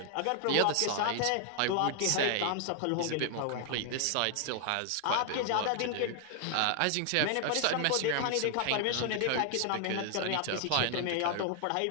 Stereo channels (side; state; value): both; different; correlation 0.00